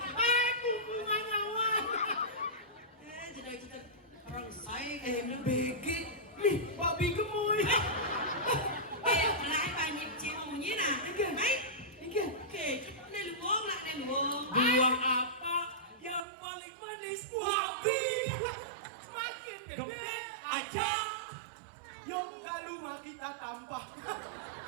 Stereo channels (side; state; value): left; drops out; at 16.2 s